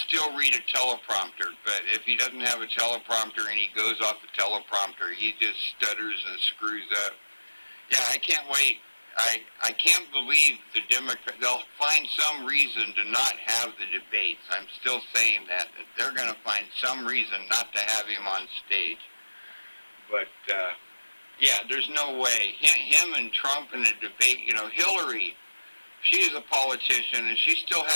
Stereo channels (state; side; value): inverted; both; correlation -1.00